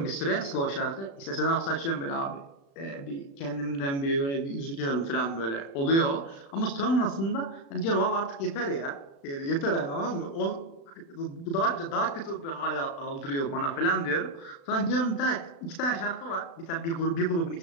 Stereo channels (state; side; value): late; right; 36 ms